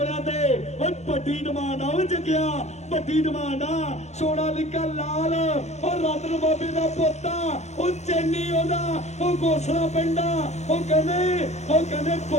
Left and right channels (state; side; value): late; right; 0.33 ms